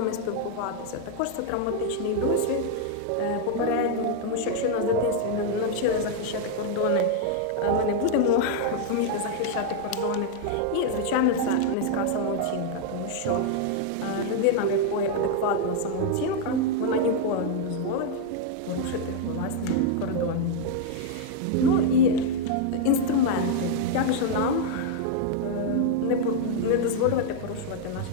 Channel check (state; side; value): different; both; correlation 0.00